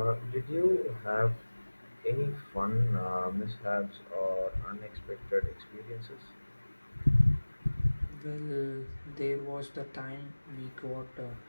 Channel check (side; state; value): both; inverted; correlation -1.00